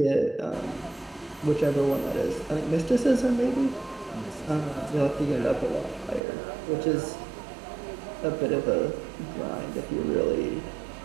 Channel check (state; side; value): drops out; left; at 6.2 s